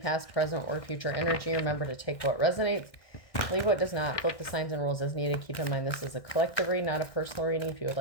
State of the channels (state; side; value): late; right; 1.6 ms